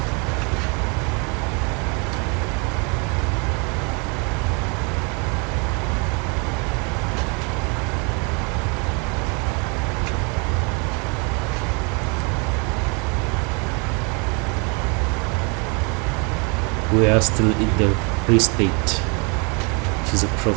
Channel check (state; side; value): quieter; left; 33.0 dB